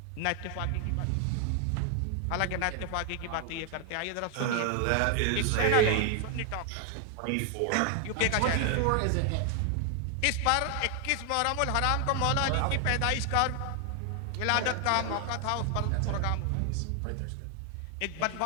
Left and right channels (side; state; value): both; different; correlation 0.00